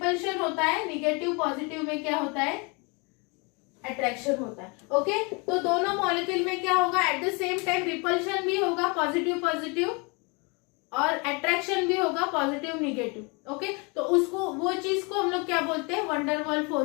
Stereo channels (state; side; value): quieter; right; 30.6 dB